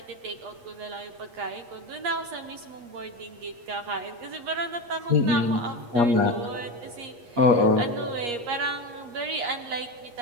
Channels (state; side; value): late; left; 8.4 ms